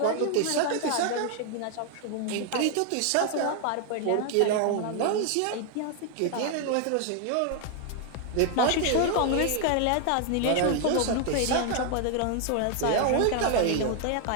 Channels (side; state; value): both; different; correlation 0.00